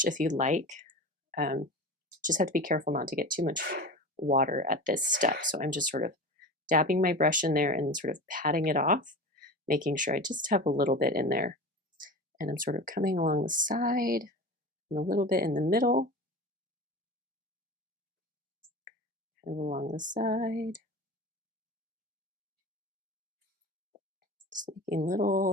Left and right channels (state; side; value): normal; both; correlation 0.31